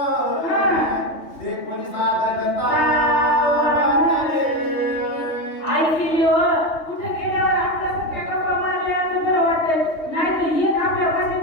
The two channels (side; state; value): right; late; 3.2 ms